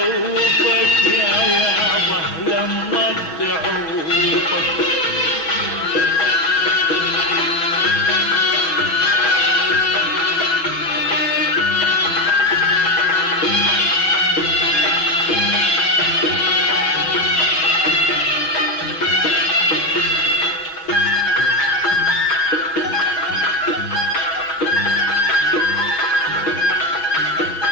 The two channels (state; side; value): late; right; 6.1 ms